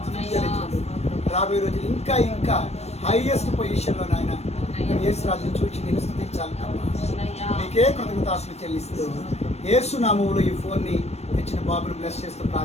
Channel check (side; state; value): right; late; 0.31 ms